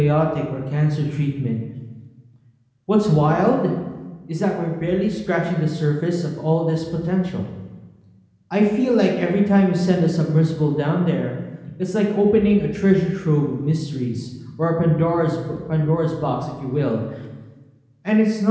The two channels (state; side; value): identical; both; correlation 1.00